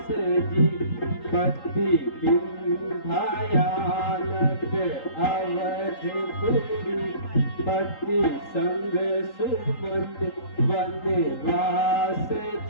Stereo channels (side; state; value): right; late; 3.8 ms